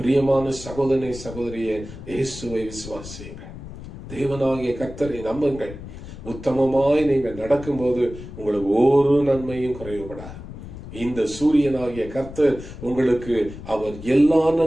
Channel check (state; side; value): noise; left; rumble, 13 dB below the sound